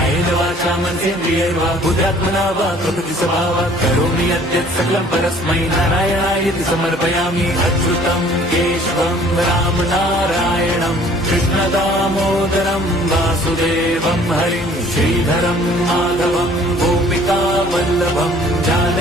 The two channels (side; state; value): both; normal; correlation 0.54